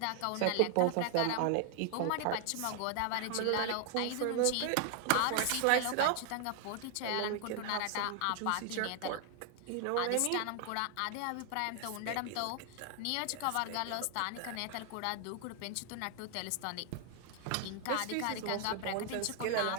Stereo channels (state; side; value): different; both; correlation 0.00